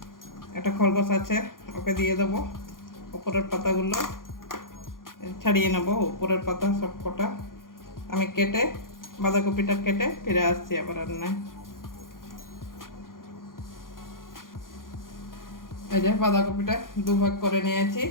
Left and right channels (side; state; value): right; late; 0.90 ms